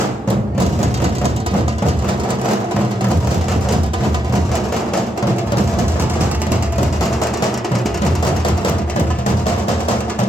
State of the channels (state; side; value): normal; both; correlation 0.81